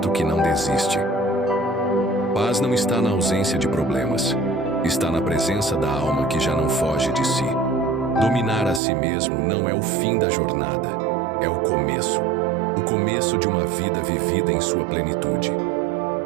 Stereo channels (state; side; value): drops out; left; at 8.8 s